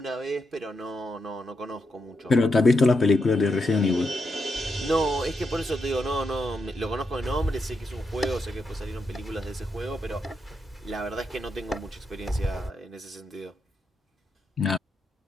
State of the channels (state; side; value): normal; both; correlation 0.83